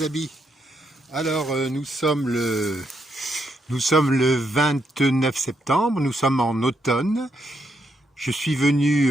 amis. Alors nous sommes le 29 septembre, nous sommes en automne. Je suis venu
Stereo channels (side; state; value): both; normal; correlation 0.78